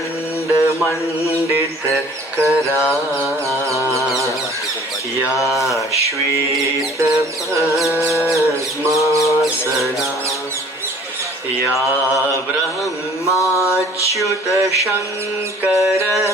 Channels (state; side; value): normal; both; correlation 0.51